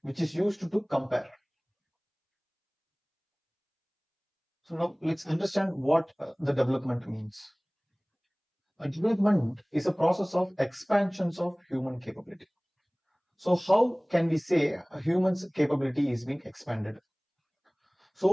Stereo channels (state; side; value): identical; both; correlation 1.00